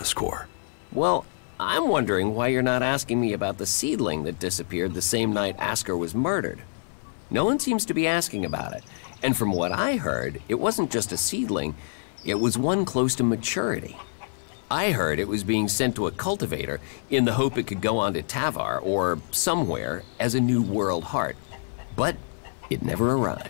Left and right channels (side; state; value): right; silent; 61 dB below the other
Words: Well, I'm wondering why you're not asking me about the seedling that disappeared the same night Ascor was murdered. No one seems to be asking about it, and from what I heard, it wasn't just a seedling, it was one close to maturity. I heard it was being sent to a cultivator in the hope it could go on to Tavar or somewhere as a new world heart. But it never